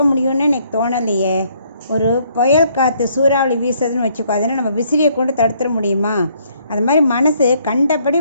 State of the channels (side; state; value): both; inverted; correlation -0.67